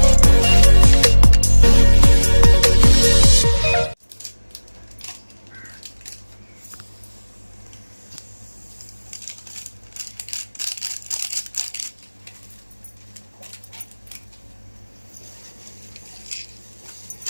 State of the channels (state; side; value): inverted; both; correlation -1.00